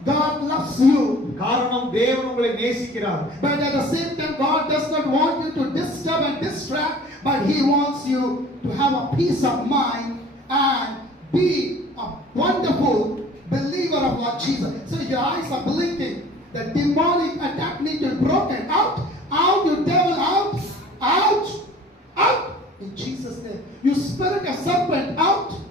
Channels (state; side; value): normal; both; correlation 0.48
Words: God loves you. காரணம் தேவன் உங்களை நேசிக்கிறார். But at the same time God does not want you to disturb and distract, but he wants you to have a peace of mind and be a wonderful believer believer of Lord Jesus. So your eyes are blinking. The demonic attack need to be broken. Out, out, you devil, out, out, out. In Jesus' name. You spirit of serpent, out,